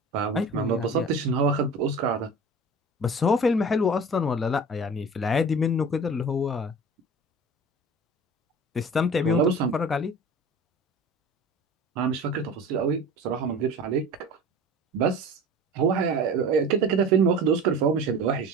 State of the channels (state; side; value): normal; both; correlation 0.38